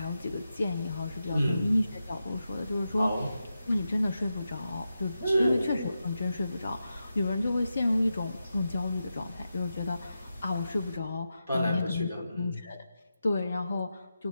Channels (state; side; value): inverted; both; correlation -0.90